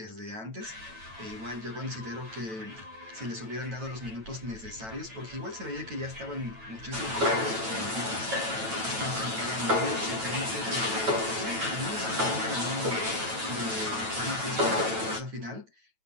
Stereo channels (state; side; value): late; left; 9.1 ms